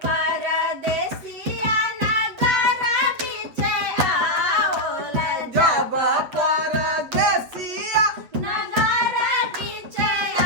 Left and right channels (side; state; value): left; late; 8.3 ms